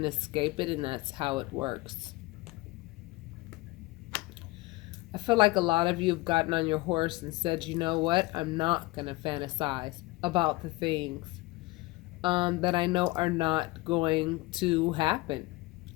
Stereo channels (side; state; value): right; quieter; 21.3 dB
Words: escape it, and that's how it works. I feel like a lot of you have gotten on your horse and said, you know what? I'm not going to fantasize about the things that I know are not going to happen.